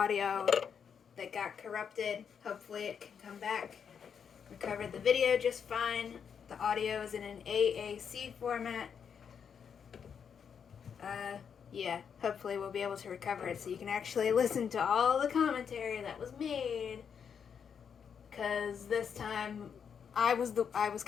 that got corrupted. Hopefully it can come back. Recovered the video just fine. The audio is in an AAC format. Yeah, hopefully we'll be able to recover it so you can actually listen to all the commentary that was made. Because this time I was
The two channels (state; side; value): quieter; right; 7.2 dB